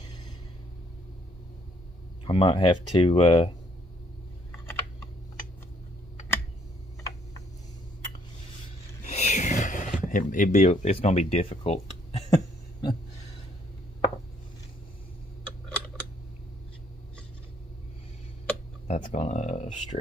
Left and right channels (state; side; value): normal; both; correlation 0.67